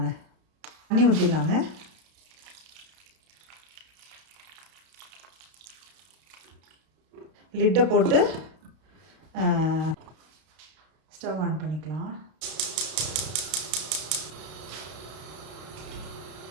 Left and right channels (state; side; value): late; left; 32 ms